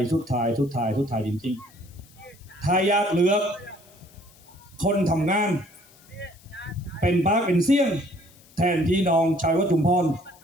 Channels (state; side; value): noise; left; hiss, 27 dB below the sound